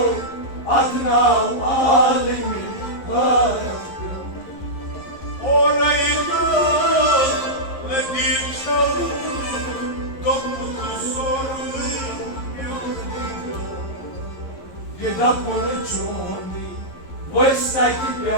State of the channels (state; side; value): late; right; 11 ms